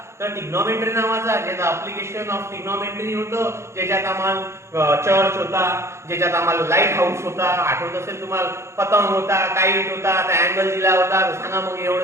तर ट्रिग्नोमेट्री नावाचा, ज्याचं ऍप्लिकेशन ऑफ ट्रिग्नोमेट्री होतं, ज्याच्यात आम्हाला चर्च होता, ज्याच्यात आम्हाला लाईट हाऊस होता, आठवत असेल तुम्हाला, पतंग होता, काईट होता, अँगल दिला होता, सांगा मग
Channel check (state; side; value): late; left; 0.13 ms